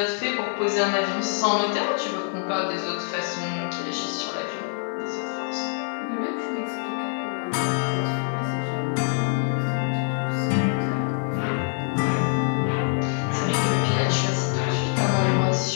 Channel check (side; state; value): right; silent; digital silence